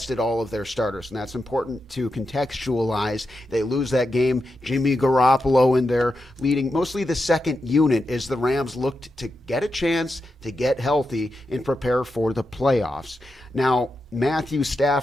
all of their starters, and that's important to contextualize. They lose that game. Jimmy Garoppolo in there leading mostly the second unit as the Rams looked to get a chance to get healthy and prepare for the playoffs. Now, Matthew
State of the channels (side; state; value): both; normal; correlation 0.88